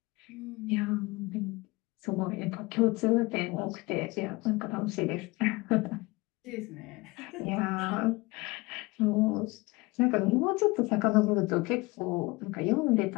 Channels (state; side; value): quieter; right; 23.3 dB